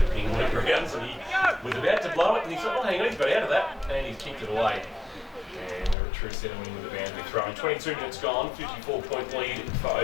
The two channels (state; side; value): drops out; right; at 6.0 s